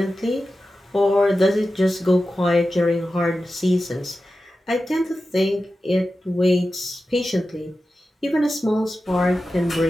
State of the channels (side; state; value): both; normal; correlation 0.93